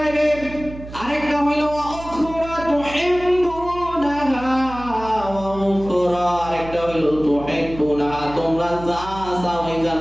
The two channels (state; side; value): noise; right; hum, 13 dB below the sound